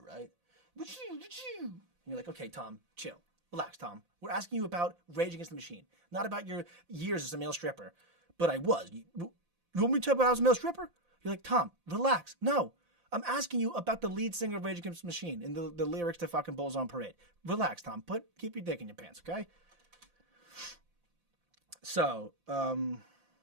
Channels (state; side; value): late; left; 5.8 ms